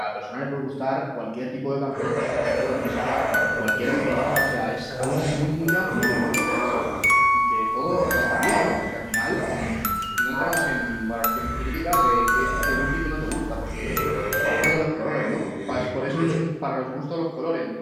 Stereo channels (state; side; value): identical; both; correlation 1.00